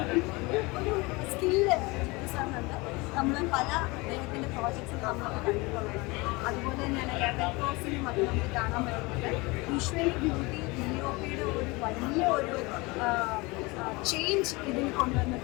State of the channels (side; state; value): right; quieter; 24.5 dB